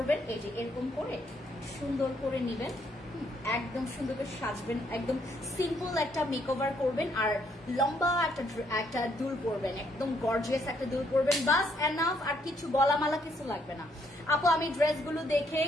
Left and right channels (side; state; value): both; normal; correlation 0.71